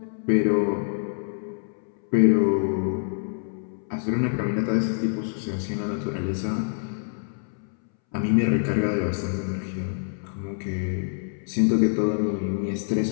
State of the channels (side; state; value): right; silent; 61 dB below the other